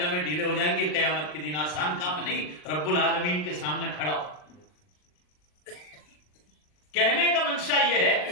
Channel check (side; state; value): right; late; 39 ms